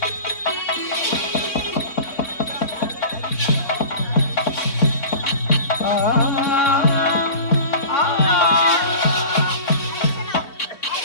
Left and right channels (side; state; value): right; late; 3.7 ms